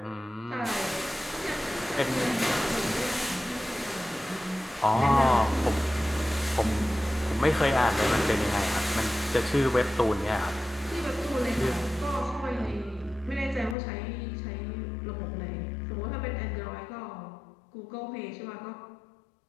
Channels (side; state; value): right; drops out; at 13.8 s